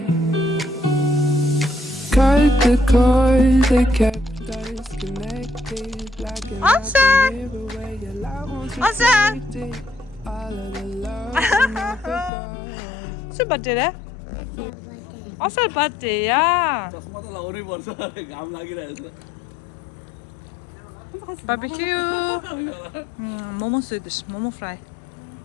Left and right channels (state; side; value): drops out; right; at 12.3 s